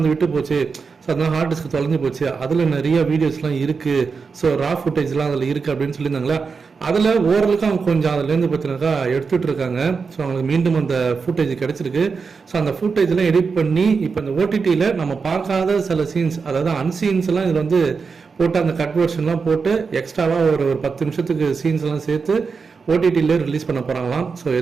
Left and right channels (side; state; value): left; quieter; 5.1 dB